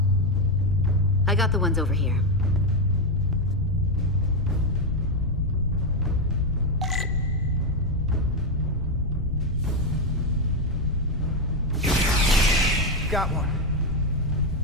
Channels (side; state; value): both; normal; correlation 0.06